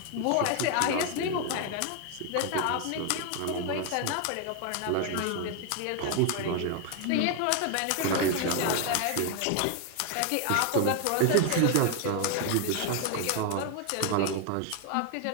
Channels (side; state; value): both; different; correlation 0.01